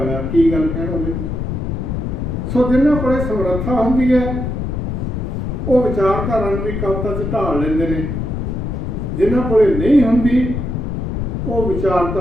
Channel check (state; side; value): noise; left; rumble, 3 dB below the sound